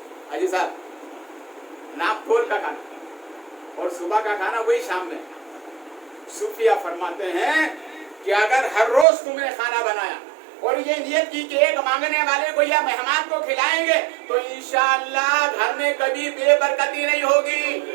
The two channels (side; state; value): left; drops out; at 9.1 s